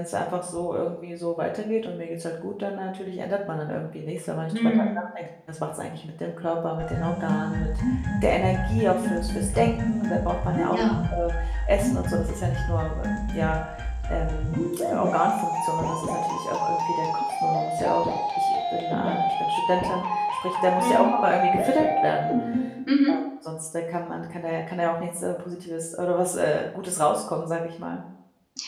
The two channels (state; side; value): identical; both; correlation 1.00